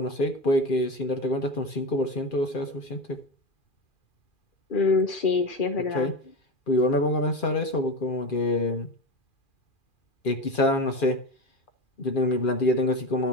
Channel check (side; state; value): right; late; 2.4 ms